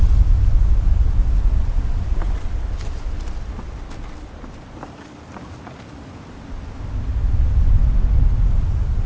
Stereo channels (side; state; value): both; identical; correlation 1.00